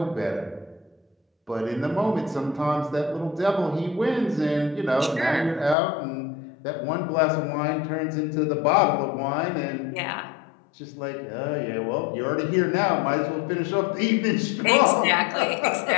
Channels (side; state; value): right; drops out; at 5.8 s